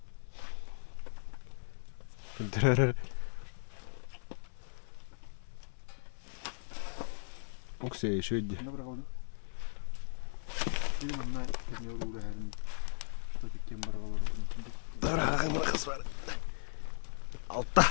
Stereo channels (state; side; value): silent; right; 53 dB below the other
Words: Дәрі. Okey, şöyle. Ne bırakalım? Benim anne ne olur her gün. Tabii ki bırakalım. Bırakalım kız var. Altta.